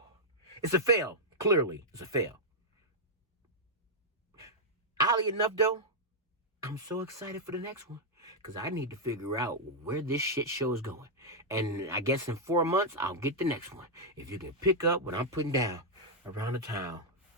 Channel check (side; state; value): both; normal; correlation -0.04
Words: It's a fail. Clearly, it's a fail. Oddly enough, though, I'm so excited for the next one. Because I need to figure out where this shit show is going. And I guess in 4 months, I'll get the next one. If you can pick up what I'm putting down around the town.